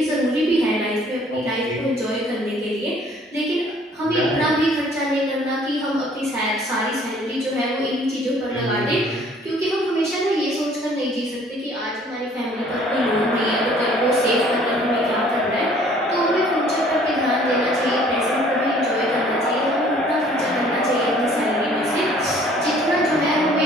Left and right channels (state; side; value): normal; both; correlation 0.56